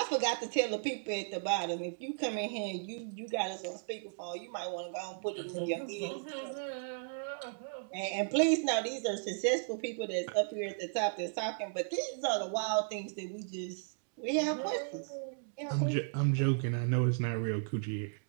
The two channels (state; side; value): silent; left; digital silence